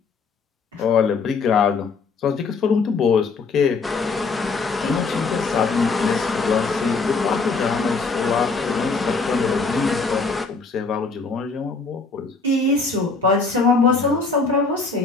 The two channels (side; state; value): right; quieter; 4.3 dB